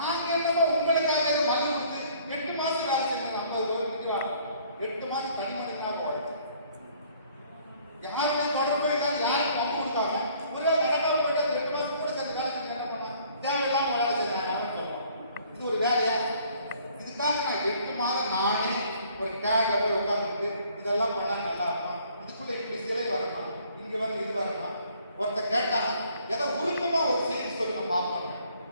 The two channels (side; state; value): both; inverted; correlation -0.59